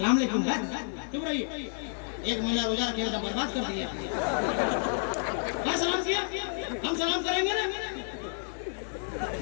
अलैकुम, चुप रहिए, 1 महीना रोजा रखेगा तो बर्बाद कर दिया। क्या सलाम किया? हम सलाम करेंगे ना,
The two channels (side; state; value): right; silent; 58 dB below the other